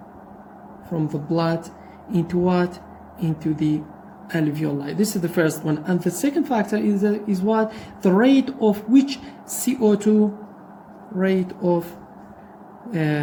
into what? Into the alveoli. This is the first one. And the second factor is what? The rate of which CO2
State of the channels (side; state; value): both; identical; correlation 1.00